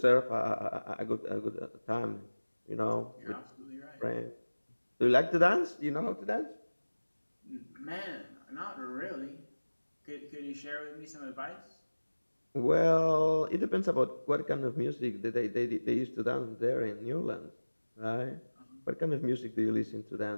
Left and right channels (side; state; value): both; inverted; correlation -1.00